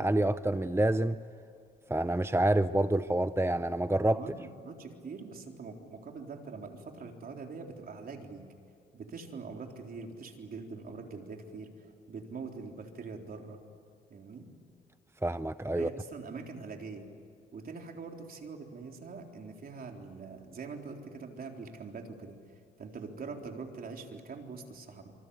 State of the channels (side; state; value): both; normal; correlation 0.86